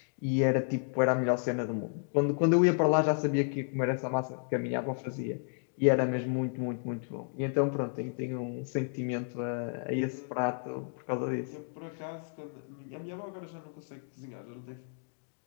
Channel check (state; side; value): silent; right; digital silence